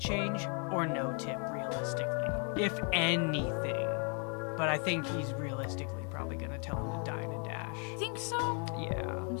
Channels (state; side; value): quieter; right; 39.0 dB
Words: or no tip, realistically. If anything. But I think he's realistically probably gonna tell him to dine and dash. Think so? Yeah. I'm